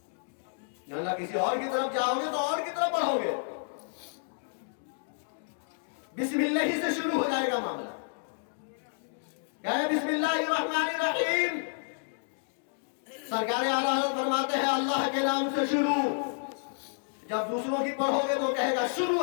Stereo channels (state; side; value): silent; right; digital silence